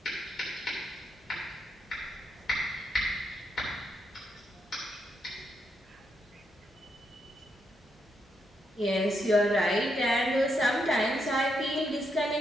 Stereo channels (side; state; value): both; normal; correlation 0.80